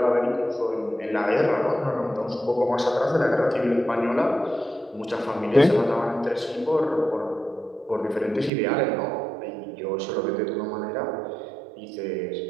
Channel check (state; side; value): drops out; left; at 8.5 s